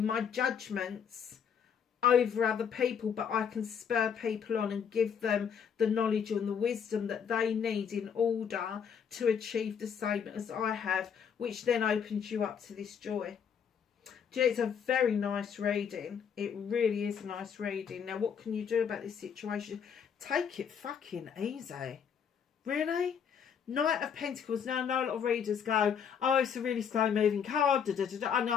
my judgments over other people, but I can spur people on and give them the knowledge and the wisdom that they need in order to achieve the same as I have, which then opens you up to this joy. It's a very nice reading. It really is a nice reading. Now, what can you do about this situation? Take it fucking easy. Really? Knight of Pentacles. Now, I know a lot of readers go, oh, it's a really slow moving card. I know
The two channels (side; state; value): right; quieter; 7.4 dB